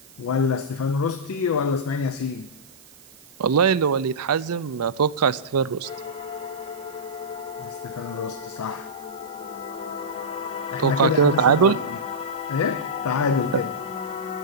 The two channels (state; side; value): noise; right; hiss, 24 dB below the sound